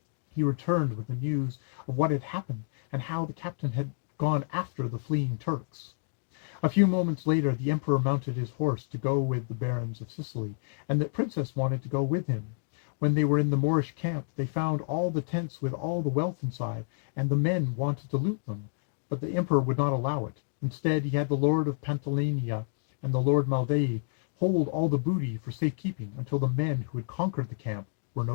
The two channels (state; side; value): silent; right; digital silence